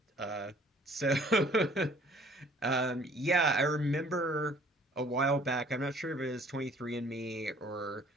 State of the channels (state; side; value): normal; both; correlation 0.56